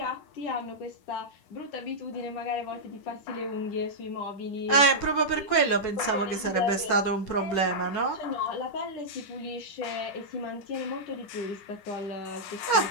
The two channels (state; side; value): late; right; 10 ms